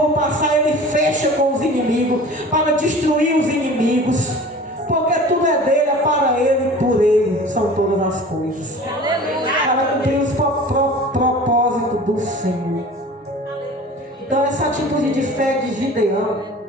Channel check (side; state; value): both; normal; correlation 0.41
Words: passar, ele fecha com os inimigos, para destruir os inimigos. Porque tudo é dele, é para ele e por ele são todas as coisas. Para cumprir os propósitos do Senhor. Então essa atitude de fé de Gideão